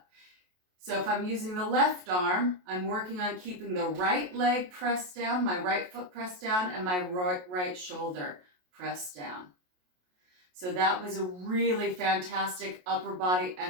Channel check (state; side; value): late; left; 28 ms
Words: So if I'm using the left arm, I'm working on keeping the right leg pressed down, my right foot pressed down, and my right shoulder pressed down. So that was a really fantastic upper body